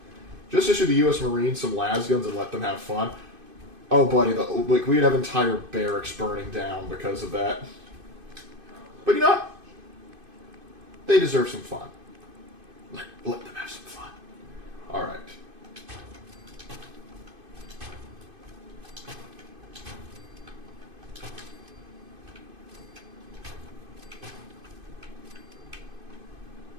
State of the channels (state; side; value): late; left; 2.5 ms